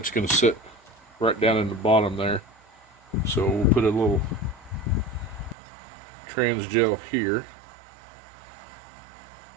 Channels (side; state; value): left; drops out; at 5.6 s